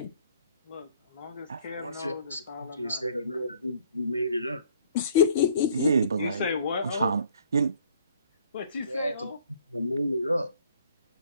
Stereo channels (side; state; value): both; inverted; correlation -0.59